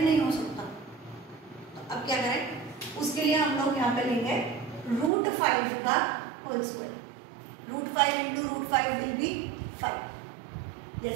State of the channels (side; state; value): left; drops out; at 5.1 s